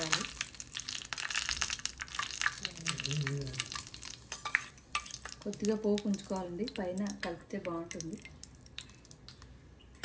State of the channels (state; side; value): identical; both; correlation 1.00